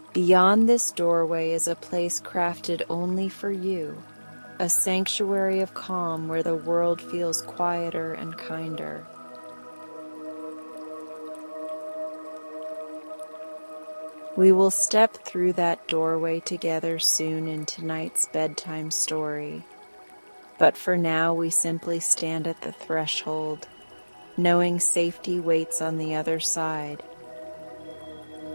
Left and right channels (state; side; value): inverted; both; correlation -1.00